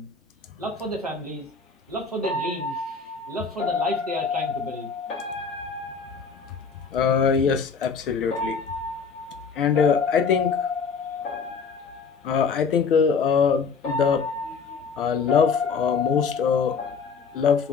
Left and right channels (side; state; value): right; quieter; 5.4 dB